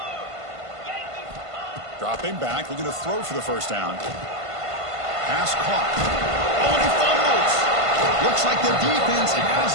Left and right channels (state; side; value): late; left; 1.5 ms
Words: Dropping back, looking to throw for the first down. Pass caught. Oh, and he fumbles. Looks like the defense